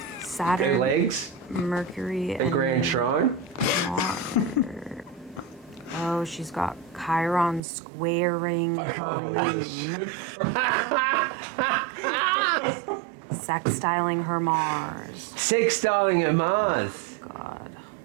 Saturn, Their legs, Mercury, a and grand shrine. Mars. Oh, she's got Chiron squaring. I can't believe this shit. Sextiling her Mars. Sextiling her Mars. Oh, God.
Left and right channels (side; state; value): left; drops out; at 7.6 s